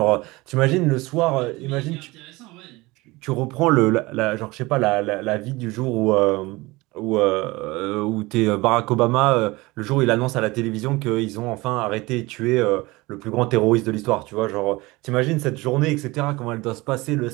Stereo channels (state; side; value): quieter; left; 22.0 dB